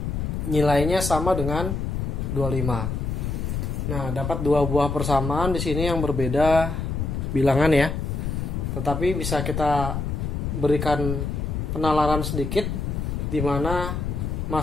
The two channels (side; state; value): left; noise; rumble, 2 dB below the sound